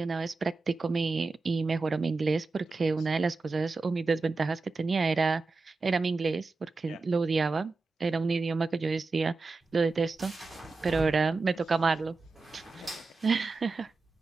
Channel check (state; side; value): quieter; left; 3.9 dB